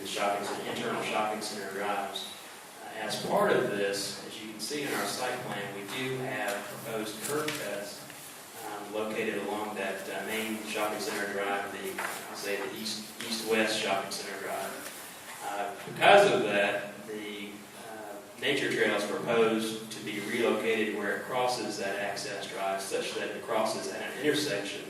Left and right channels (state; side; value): identical; both; correlation 1.00